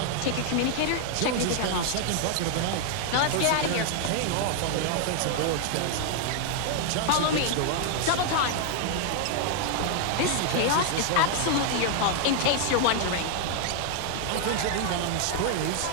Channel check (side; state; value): both; different; correlation 0.00